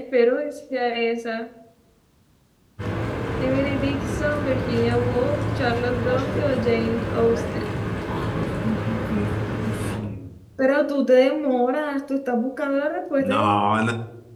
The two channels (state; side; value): identical; both; correlation 1.00